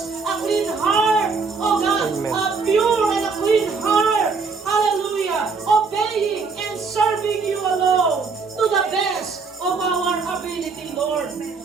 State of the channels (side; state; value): left; quieter; 4.7 dB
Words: a clean heart, oh God, Amen. a pure and a clean heart. Hallelujah. Obeying and serving you alone to the best of our ability, Lord.